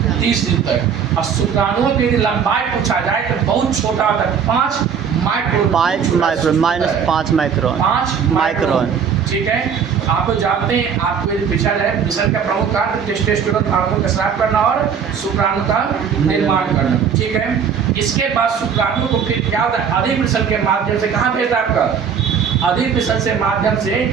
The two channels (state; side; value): quieter; left; 7.1 dB